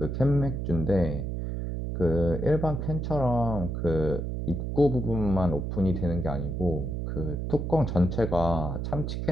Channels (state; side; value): noise; right; hum, 3 dB below the sound